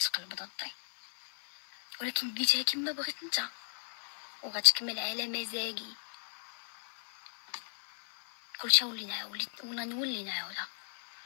ضدي، ولكن بديتها كما بغيت انت، وغتكمل على مزاجي. كلشي نولي نعاودها.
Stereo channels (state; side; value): silent; right; 54 dB below the other